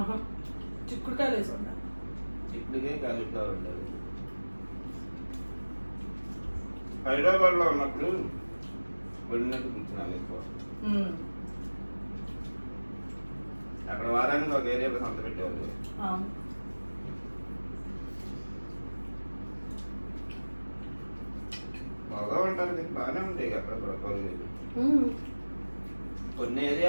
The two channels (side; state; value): both; inverted; correlation -1.00